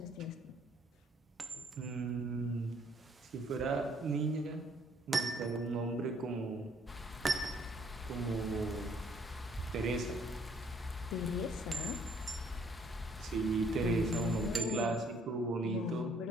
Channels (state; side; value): normal; both; correlation 0.64